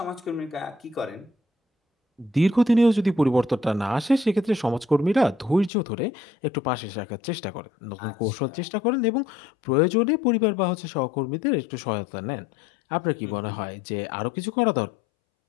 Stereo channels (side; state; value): right; drops out; at 5.7 s